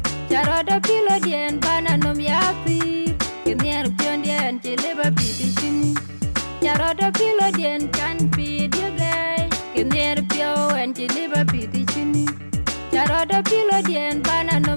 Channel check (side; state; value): both; inverted; correlation -1.00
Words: Nyarada kilo dien bana nom yapi, kinyer pio dien chiliba pi di chini. Nyarada kilo dien kan pi dige, kinyer pio en chiliba pi di chini. Nyarada kilo dien bana